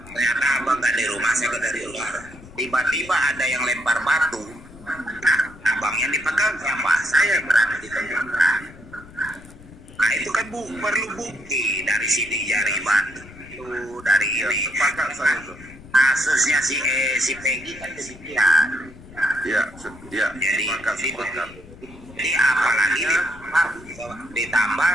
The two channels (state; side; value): noise; left; rumble, 19 dB below the sound